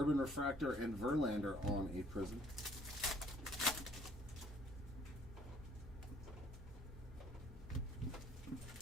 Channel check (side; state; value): both; normal; correlation 0.60